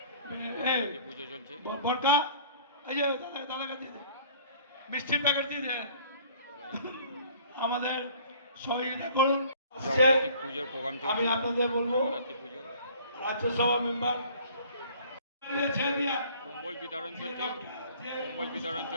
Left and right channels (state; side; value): inverted; both; correlation -0.52